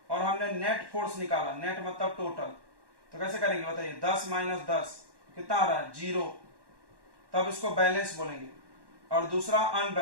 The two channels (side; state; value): left; late; 1.1 ms